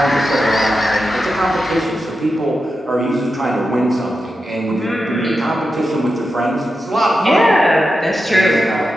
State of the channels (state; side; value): normal; both; correlation 0.90